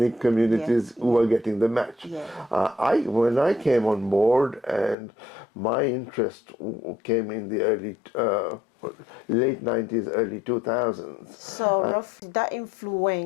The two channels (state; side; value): drops out; right; at 5.0 s